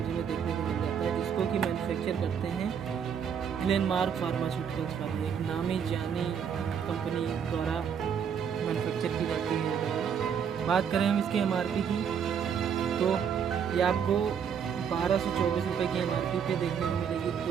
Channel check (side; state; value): left; quieter; 7.6 dB